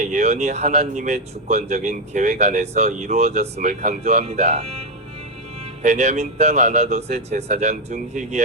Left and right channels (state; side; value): normal; both; correlation 0.04